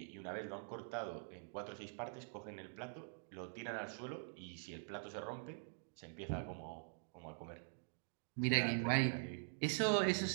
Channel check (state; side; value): silent; left; digital silence